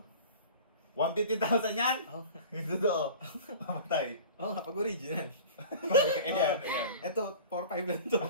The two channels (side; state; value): both; inverted; correlation -0.39